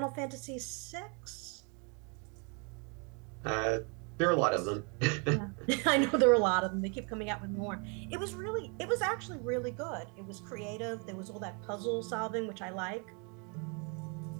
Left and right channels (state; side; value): quieter; left; 34.7 dB